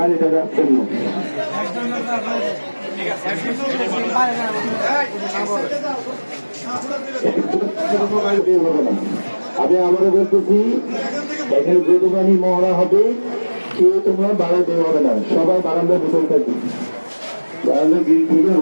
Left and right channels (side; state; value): both; inverted; correlation -1.00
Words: রাখছেন না। আমি আবারও বলতেছি, এখানে যে দোকানি মহড়া হবে কেউ তোমরা বাড়া দেওয়া হবে না, সবাই বারান্দায় বসে থাকবে, বারান্দা গিয়ে থেকে